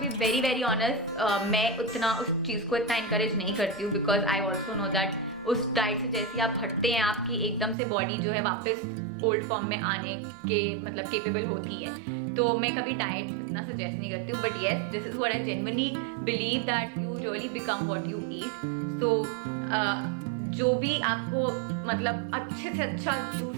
be very very honest, मैं उतना उस चीज़ को इतना encourage नहीं करती हूँ, because I also know that उस डाइट से जैसे आप हटते हैं आपकी एकदम से बॉडी जो है वापस ओल्ड फॉर्म में आने के मतलब केपेबल होती है। तो मैं कभी डाइट इतना सजेस्ट नहीं करती हूँ, but yes this is what I genuinely believe that you really become what you eat. So जो भी आपको मतलब अच्छे से अच्छा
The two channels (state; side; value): drops out; left; at 7.8 s